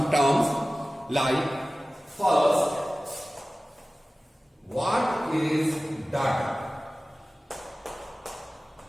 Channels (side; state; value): both; normal; correlation 0.97